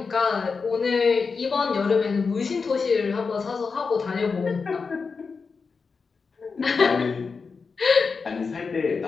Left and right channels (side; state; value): right; quieter; 4.9 dB